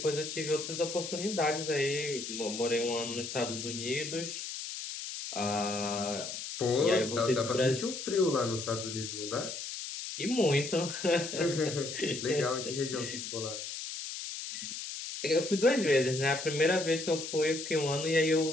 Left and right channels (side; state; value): left; noise; hiss, 7 dB below the sound